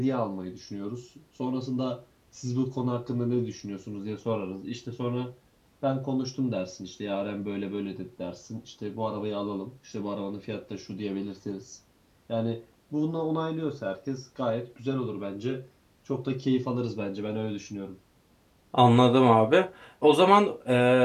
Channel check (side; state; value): both; identical; correlation 1.00